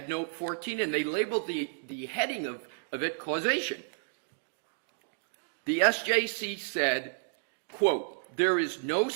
note 14, and they labeled the heading of it causation. The SJC said, quote, "There is no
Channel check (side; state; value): left; silent; digital silence